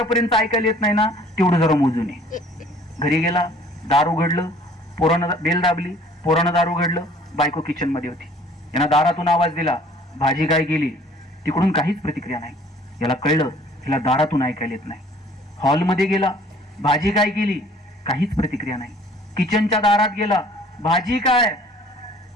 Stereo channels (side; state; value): both; normal; correlation 0.54